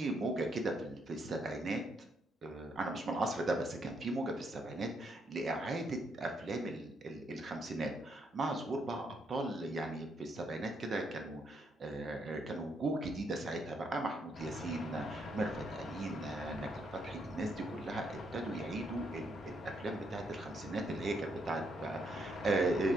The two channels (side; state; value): both; normal; correlation 0.75